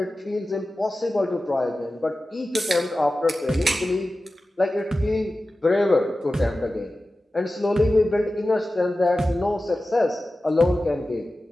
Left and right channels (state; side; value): normal; both; correlation 0.95